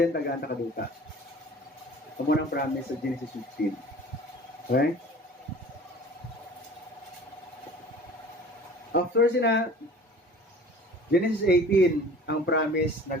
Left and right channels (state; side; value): normal; both; correlation 0.44